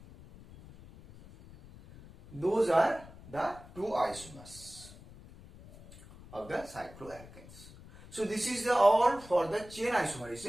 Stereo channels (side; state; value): left; noise; rumble, 19 dB below the sound